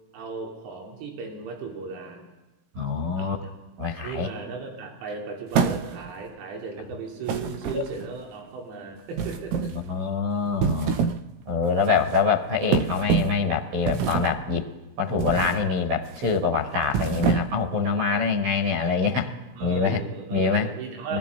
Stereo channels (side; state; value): left; late; 17 ms